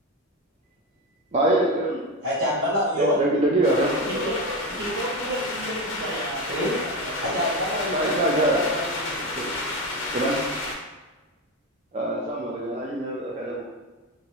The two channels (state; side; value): normal; both; correlation 0.17